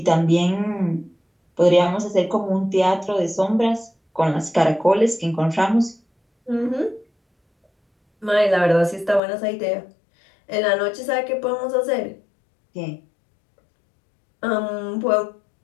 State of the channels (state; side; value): drops out; right; at 9.2 s